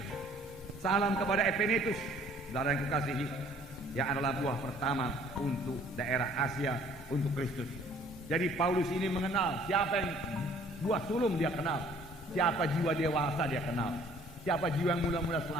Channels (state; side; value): normal; both; correlation 0.56